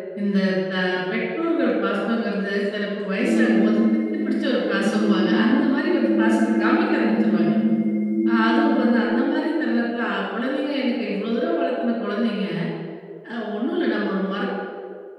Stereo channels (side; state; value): both; identical; correlation 1.00